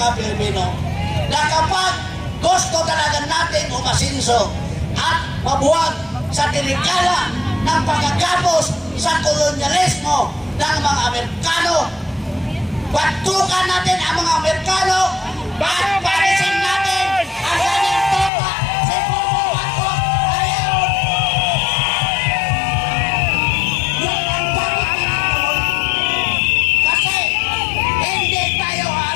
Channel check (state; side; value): drops out; right; at 18.3 s